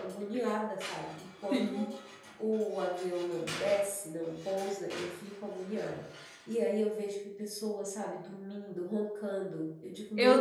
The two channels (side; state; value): both; identical; correlation 1.00